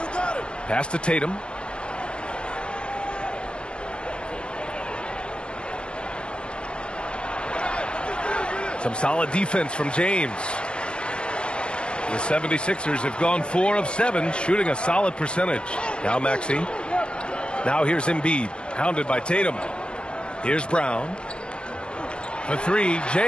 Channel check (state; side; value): late; right; 0.055 ms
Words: Pass to Tatum. Some solid defense from James. The 76ers have gone 4 of 7, shooting a solid percentage. Now Maxey. Now here's Embiid, hounded by Tatum. Here's Brown. For 3,